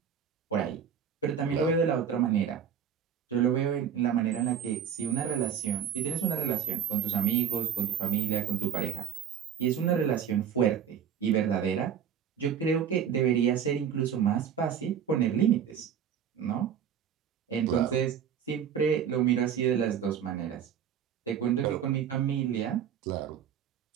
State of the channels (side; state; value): left; quieter; 8.4 dB